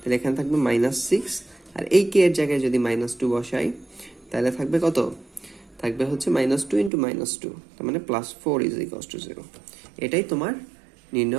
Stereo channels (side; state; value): left; drops out; at 6.9 s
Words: এখানে থাকবে -6, আর এই কে এর জায়গায় যদি -2 বসাই তাহলে থাকবে কত? থাকবে হচ্ছে -2 ইন্টু -2, তার মানে +4 ইজ ইকুয়ালস টু 0। এটাই তোমার